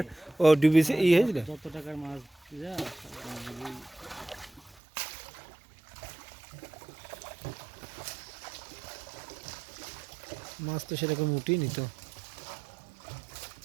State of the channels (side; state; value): left; drops out; at 4.8 s